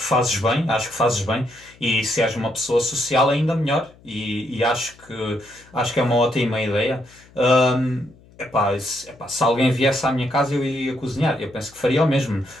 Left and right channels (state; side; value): noise; left; hum, 26 dB below the sound